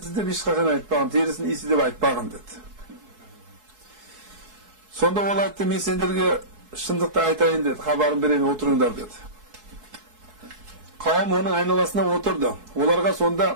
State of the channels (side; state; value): left; late; 4.6 ms